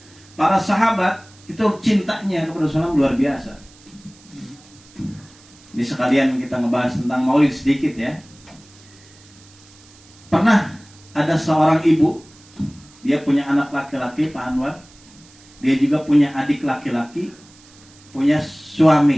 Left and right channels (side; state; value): right; noise; hiss, 25 dB below the sound